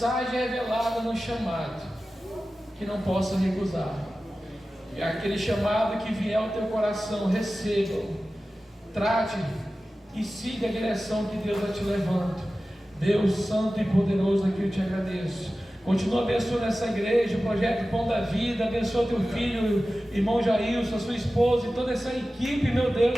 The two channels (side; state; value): both; normal; correlation 0.95